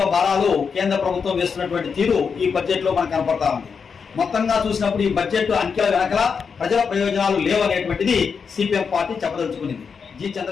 భారాలు కేంద్ర ప్రభుత్వం వేస్తున్నటువంటి తీరు ఈ బడ్జెట్ లో మనకు కనపడతా ఉంది. మొత్తంగా చూసినప్పుడు ఈ బడ్జెట్ అంకెల వెనకల ప్రజల ప్రయోజనాలు లేవనేటువంటిది సిపిఎం పార్టీ చెప్పదలుచుకునింది. జి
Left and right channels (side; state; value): right; quieter; 5.9 dB